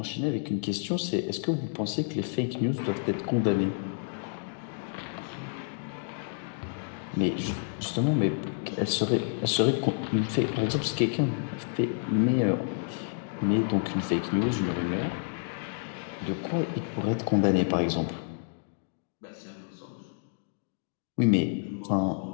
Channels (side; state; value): right; silent; digital silence